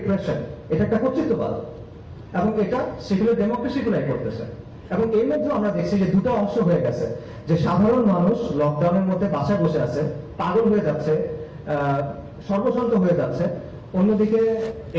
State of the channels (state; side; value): identical; both; correlation 1.00